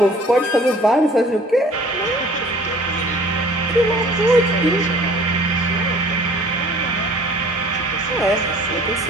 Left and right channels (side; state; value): both; normal; correlation 0.51